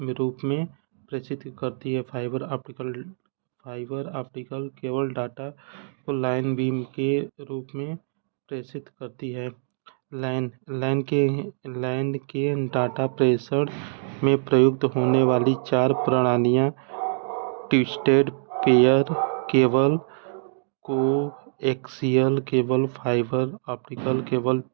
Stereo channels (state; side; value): silent; left; digital silence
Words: रूप में प्रेषित करती है। फाइबर ऑप्टिकल केबल डाटा को लाइन बीम के रूप में प्रेषित करती है। लाइन के डाटा प्रेषण में प्रयुक्त होने वाली चार प्रणालियाँ twisted pair cable, coaxial cable, fibre optical cable,